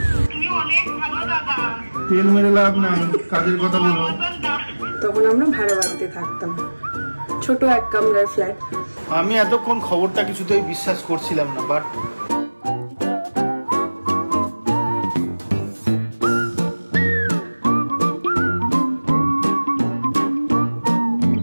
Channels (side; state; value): both; inverted; correlation -1.00